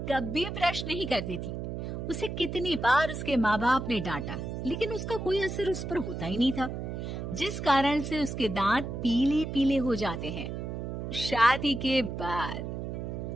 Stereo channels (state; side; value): noise; right; hum, 5 dB below the sound